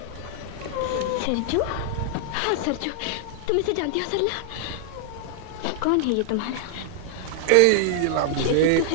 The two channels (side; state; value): both; different; correlation -0.01